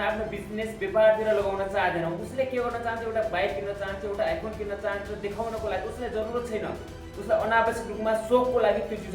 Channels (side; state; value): both; identical; correlation 1.00